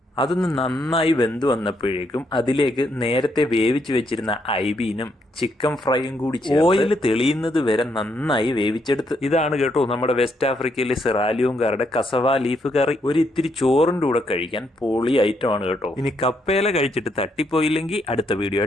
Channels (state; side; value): normal; both; correlation 0.76